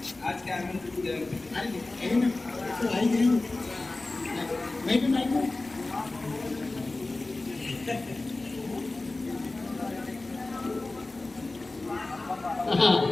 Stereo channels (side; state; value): right; quieter; 3.1 dB